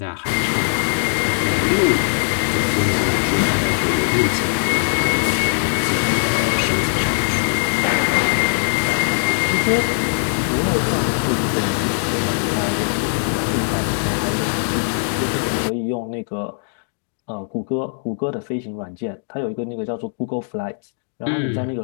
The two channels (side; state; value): right; silent; 66 dB below the other